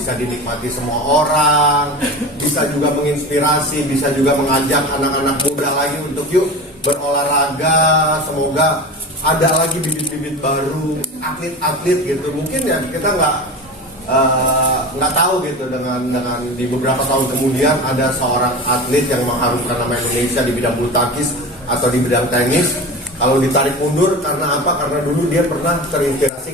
dinikmati semua orang, bisa juga menginspirasi, bisa juga mengajak anak-anak muda lagi untuk yuk berolahraga. Semoga ada lagi bibit-bibit baru, atlet-atlet gitu. Mungkin ya kita nggak tahu gitu dengan di beberapa tahun kemudian ada seorang atlet yang mengharumkan nama Indonesia di bidang bulu tangkis atau di bidang tenis. Kalau ditarik mundur karena apa? Karena dulu dia pernah terinspirasi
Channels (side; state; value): both; normal; correlation 0.30